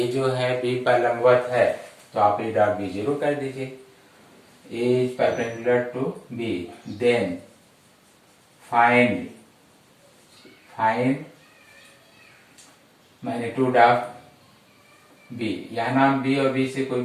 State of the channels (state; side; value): identical; both; correlation 1.00